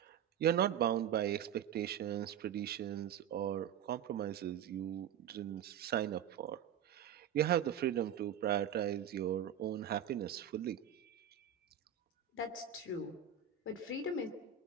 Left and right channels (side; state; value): left; quieter; 9.0 dB